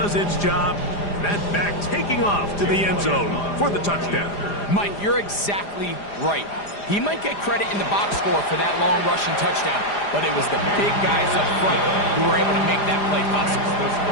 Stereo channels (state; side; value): late; right; 4.9 ms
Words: its job. That back taking off to the end zone for the touchdown. Mike, you're exactly right. He might get credit in the box score for that long rushing touchdown, but it was the big guys up front who were able to make that play possible. The